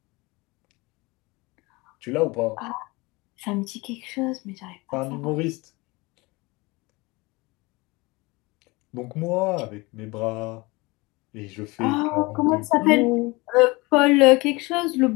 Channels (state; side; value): quieter; right; 24.1 dB